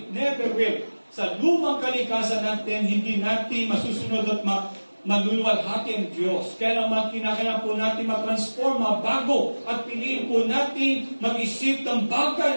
never will. Sa lumang kalikasan natin, hindi natin masusunod at maluluwalhati ang Diyos. Kaya naman kinakailangan po natin matransform, mabago at piliin po natin mag-isip ng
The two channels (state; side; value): inverted; both; correlation -1.00